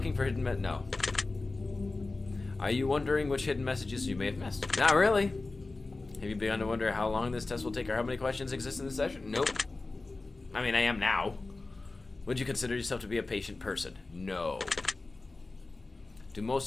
for hidden... No. Are you wondering which hidden messages you may have missed? Not really. Have you begun to wonder how long this test will take or how many questions exist in this session? Nope. I mean, I am now. Would you consider yourself to be a patient person? No. Do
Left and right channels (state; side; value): quieter; right; 3.4 dB